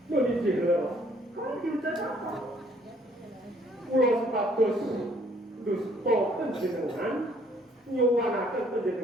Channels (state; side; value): normal; both; correlation 0.62